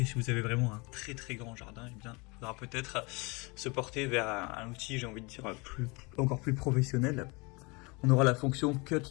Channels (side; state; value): right; quieter; 27.7 dB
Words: si vous avez vraiment un très très grand jardin, eh bien, il faudra peut-être se porter vers un outil, j'ai envie de dire, encore plus professionnel. On aura la fonction